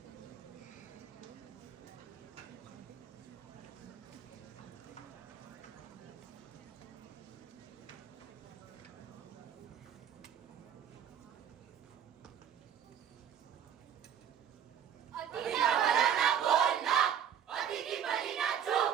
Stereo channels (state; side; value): quieter; left; 9.0 dB